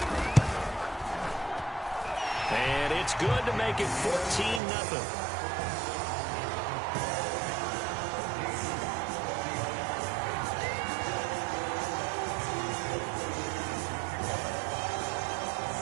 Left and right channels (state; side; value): drops out; left; at 4.6 s